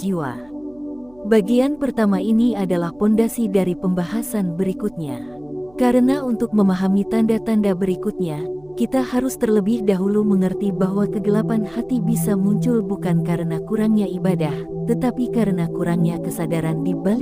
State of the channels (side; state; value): right; noise; hum, 28 dB below the sound